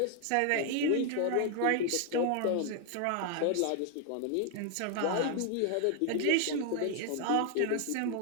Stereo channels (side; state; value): both; different; correlation 0.01